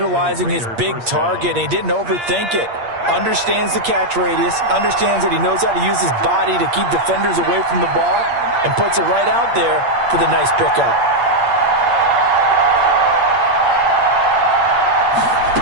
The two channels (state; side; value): late; left; 8.6 ms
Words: his big target. He didn't overthink it. Understands the catch radius. Understands that he knows how to use his body to keep defenders away from the ball. And puts it right out there for the nice pickup.